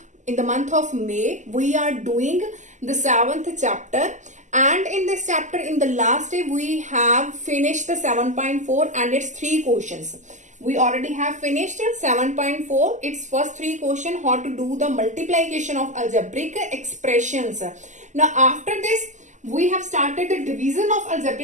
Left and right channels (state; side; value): late; left; 0.35 ms